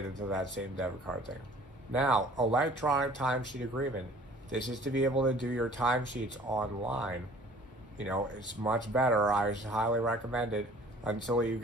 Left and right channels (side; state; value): both; normal; correlation 0.51